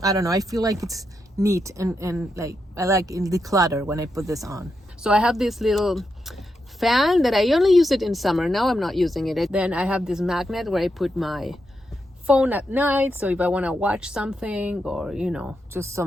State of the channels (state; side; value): normal; both; correlation 0.84